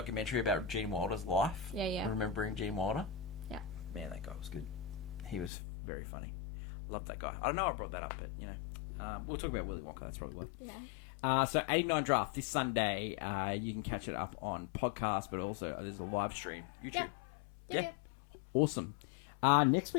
about Gene Wilder's life. Yeah. Remembering Gene Wilder. Yeah. Man, that guy was good. He was very funny. Love that guy. I don't know I brought that up, but, we'll talk about Willy Wonka. That's probably why. Yeah. So 89 Draft this Sunday. You can catch it up on podcast, but also there's a live stream. YouTube. Yeah. Awesome. Next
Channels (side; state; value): right; drops out; at 5.5 s